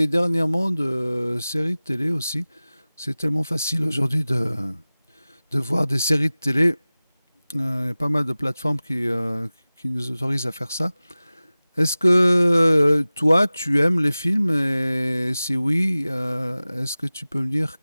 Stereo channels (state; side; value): inverted; both; correlation -0.98